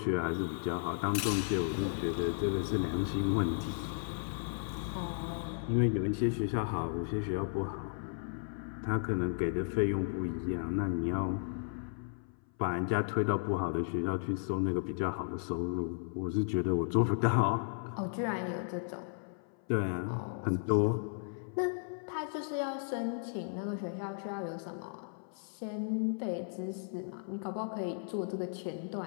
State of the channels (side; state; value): right; silent; 55 dB below the other